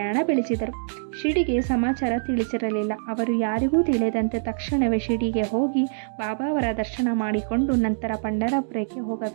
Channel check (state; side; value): silent; left; digital silence